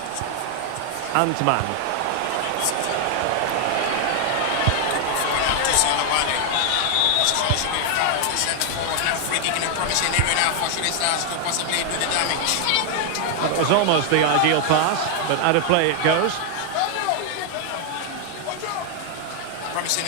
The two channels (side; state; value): both; different; correlation 0.00